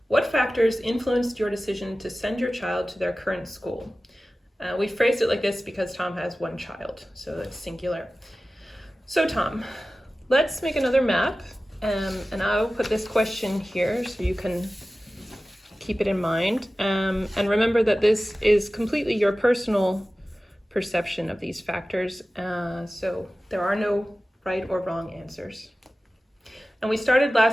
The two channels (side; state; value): both; normal; correlation 0.96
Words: what factors influenced your decision to send your child to their current school? We phrased it like this because Tom has one child, so it's singular. So Tom, let's make another map, and I'll put this question here so you can keep it in mind. And remember that this is completely your personal perception of these factors, so there are no right or wrong answers. And we started